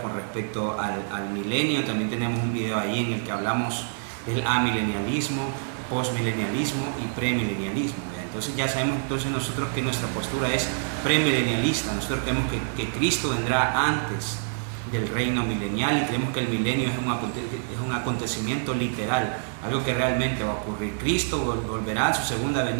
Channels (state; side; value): silent; left; digital silence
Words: con respecto al milenio. También tenemos un video ahí en el que hablamos del amilenialismo, postmilenialismo y premilenialismo. Entonces ya sabemos nosotros que nuestra postura es premilenialista. Nosotros creemos que Cristo vendrá antes del reino milenial y creemos que el milenio es un acontecimiento literal, algo que realmente va a ocurrir. Cristo volverá a su segunda